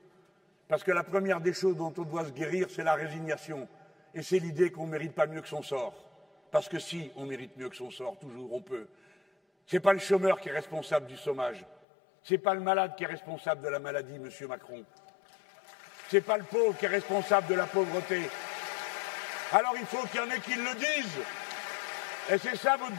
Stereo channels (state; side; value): drops out; right; at 11.8 s